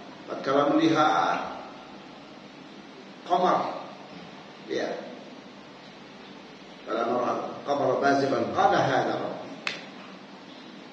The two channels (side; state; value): both; identical; correlation 1.00